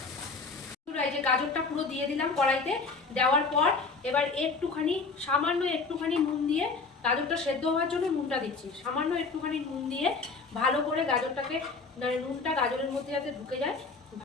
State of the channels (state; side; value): quieter; right; 4.3 dB